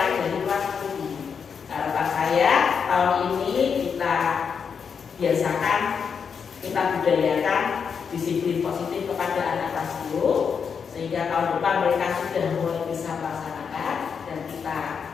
dari kelas 7. Harapan saya tahun ini kita biasakan, kita budayakan disiplin positif kepada anak kelas 10 sehingga tahun depan mereka sudah mulai bisa melaksanakan dan kita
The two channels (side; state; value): right; quieter; 6.4 dB